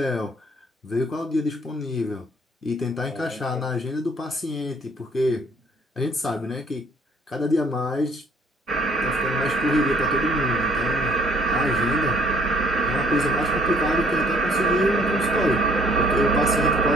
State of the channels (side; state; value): both; normal; correlation 0.60